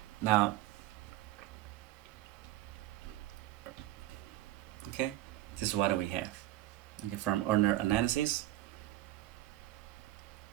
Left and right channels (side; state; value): left; quieter; 15.3 dB